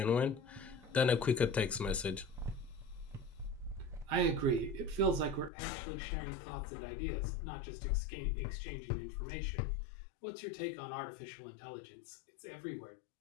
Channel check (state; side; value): drops out; right; at 5.5 s